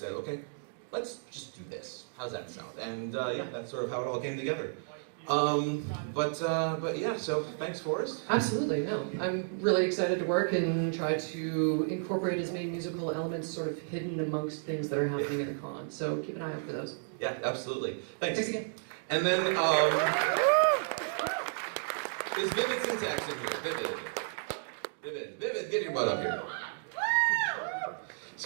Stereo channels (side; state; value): left; silent; digital silence